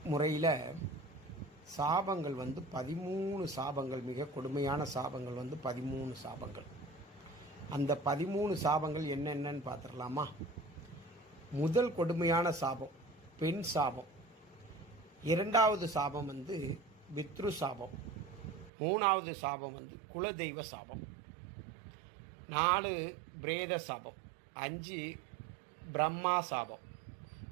முறையில் சாபங்கள் 13 சாபங்கள், மிக கொடுமையான சாபங்கள் 13 சாபங்கள். அந்த 13 சாபங்கள் என்னென்னு பார்த்துடலாமா? முதல் கொடுமையான சாபம் பெண் சாபம். இரண்டாவது சாபம் பித்ரு சாபம். மூணாவது சாபம் குலதெய்வ சாபம். 4 பிரேத சாபம். 5 பிரம்மா சாபம்.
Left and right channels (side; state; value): left; drops out; at 18.7 s